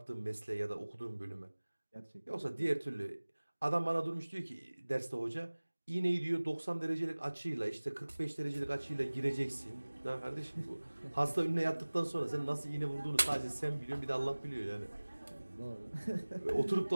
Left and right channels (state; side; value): inverted; both; correlation -1.00